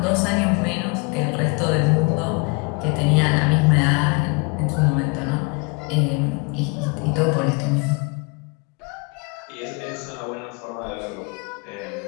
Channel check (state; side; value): quieter; right; 31.0 dB